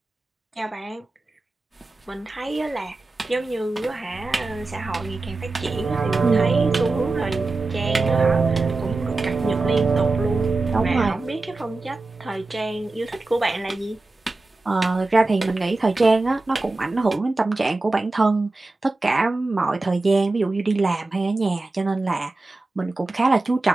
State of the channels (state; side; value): quieter; left; 3.3 dB